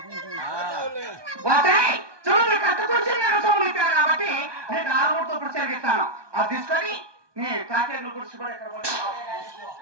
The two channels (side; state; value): left; late; 1.2 ms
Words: చూడు కట్టుకొచ్చి నేను సోమలిస్తాను కాబట్టి నేను 6 ఇప్పుడు చెరిగిస్తాను. అది తీసుకొని నీ కాకేళ్ళు గుడిచి కూడా ఎక్కడ